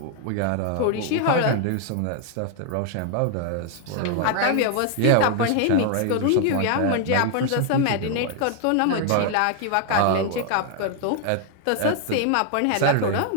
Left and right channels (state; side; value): different; both; correlation 0.00